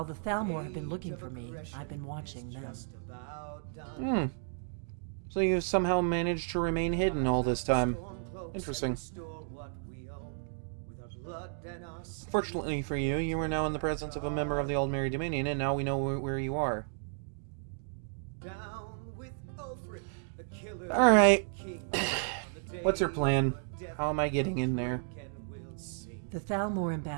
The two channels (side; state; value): left; silent; digital silence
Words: the Thalmor have been looking for me, I've been watching them. So you've somehow managed to remain hidden all this time. Interesting. Fortunately for you, you are now in the presence of a member of the Old Merry Dominion, and now we know where you are. Alright. What's your plan? How am I getting in there? The Thalmor